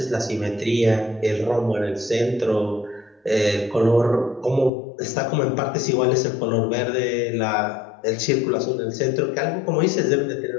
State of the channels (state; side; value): drops out; right; at 4.7 s